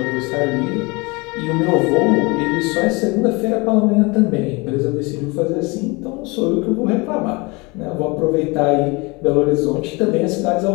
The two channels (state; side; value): quieter; right; 26.8 dB